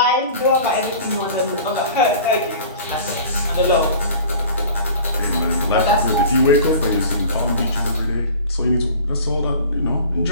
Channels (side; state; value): both; inverted; correlation -0.42